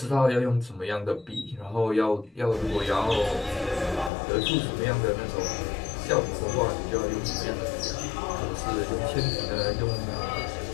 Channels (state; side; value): drops out; right; at 4.1 s